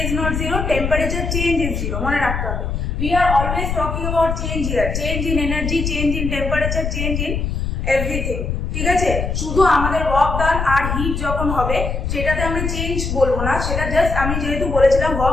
is not 0, temperature change is 0, মনে রাখতে হবে। We are always talking about change here, change in energy, change in temperature, change in everything। ঠিক আছে, শুধু আমাদের ওয়ার্ক ডান আর hit যখন হবে সেটাতে আমরা চেঞ্জ বলবো না, সেটা জাস্ট আমি যেহেতু বলেছিলাম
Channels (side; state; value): left; noise; rumble, 2 dB below the sound